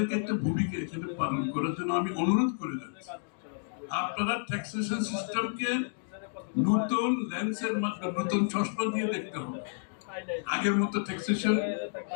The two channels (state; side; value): silent; right; digital silence